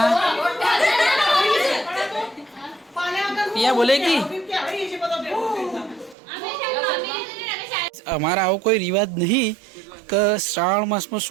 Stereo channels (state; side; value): drops out; left; at 6.2 s